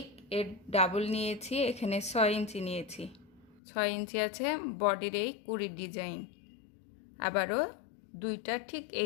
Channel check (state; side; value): drops out; right; at 3.6 s